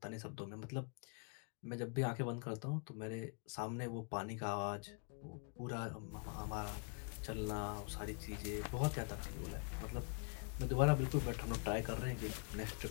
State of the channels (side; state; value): right; quieter; 37.4 dB